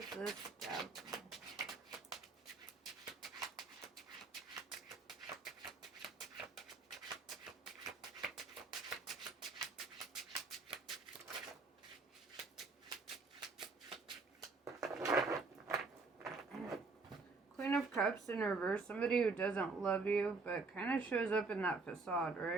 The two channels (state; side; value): quieter; left; 4.0 dB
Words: this devil? Queen of Cups in reverse. Somebody who doesn't love you, but kind of shows up in that facade,